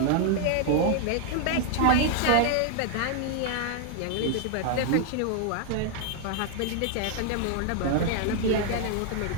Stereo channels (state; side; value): different; both; correlation 0.00